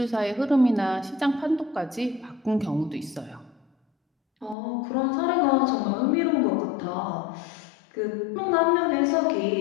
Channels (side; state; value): right; drops out; at 4.5 s